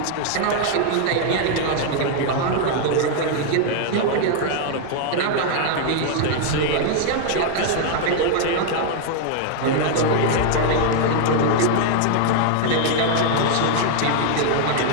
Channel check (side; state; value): both; different; correlation 0.00